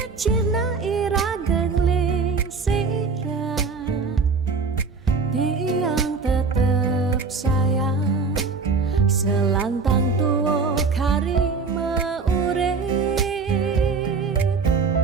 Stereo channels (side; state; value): left; quieter; 4.7 dB